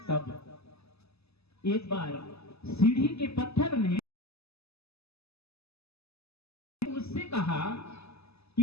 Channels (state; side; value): late; right; 0.79 ms